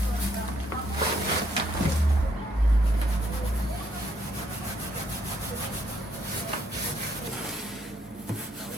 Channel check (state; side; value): normal; both; correlation 0.71